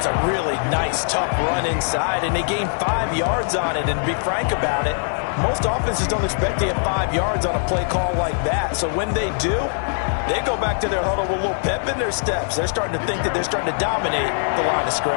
a really nice, tough run inside, and they gained 5 yards on it. And to be frank about it, most offenses don't expect to get 5 yards on a play call like that. So when they do, they go back to their huddle with a little pep in their steps. They're starting to think that they're starting to dominate the line of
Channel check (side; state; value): right; silent; digital silence